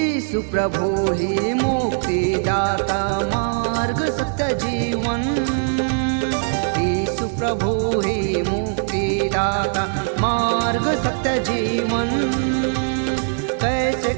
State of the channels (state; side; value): silent; left; digital silence